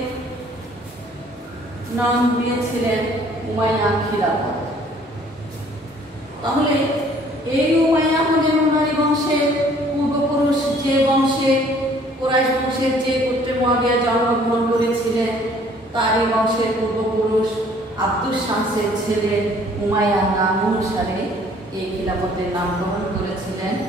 নাম দিয়েছিলেন উমাইয়া খিলাফত। তাহলে এই উমাইয়া হলেন উমাইয়া বংশের পূর্বপুরুষ, যে বংশে কুরাইশ বংশের যে গোত্রে মুয়াবিয়া জন্মগ্রহণ করেছিলেন তারই বংশের পূর্বপুরুষ আব্দুস শামসের ছেলে উমাইয়ার নাম অনুসারে এই খিলাফতের নামকরণ করেছিলেন।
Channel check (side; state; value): both; normal; correlation 0.57